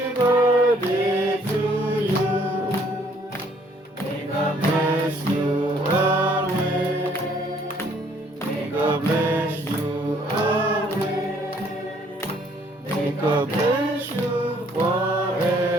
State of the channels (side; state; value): both; normal; correlation 0.63